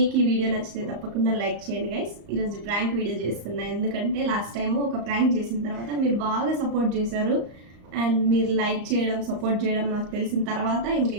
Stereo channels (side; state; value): left; late; 34 ms